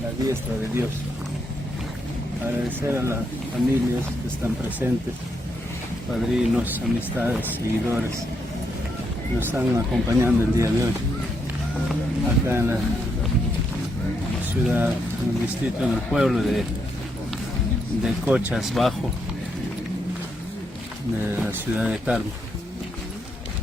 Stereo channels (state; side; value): normal; both; correlation 0.78